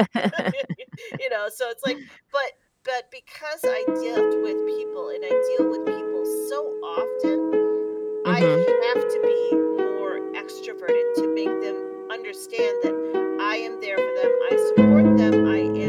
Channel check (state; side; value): identical; both; correlation 1.00